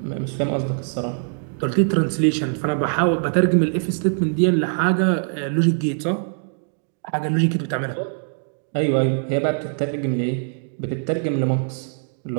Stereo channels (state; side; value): silent; left; digital silence